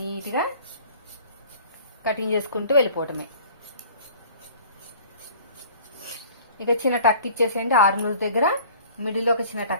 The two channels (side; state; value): both; inverted; correlation -0.48